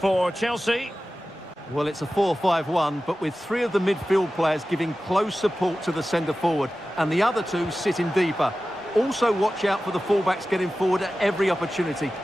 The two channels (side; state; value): both; normal; correlation 0.95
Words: Chelsea. Well, it's a 4-5-1, but with three of the midfield players giving close support to the centre-forward, and the other two sitting deeper. Also watch out for the fullbacks getting forward at every opportunity.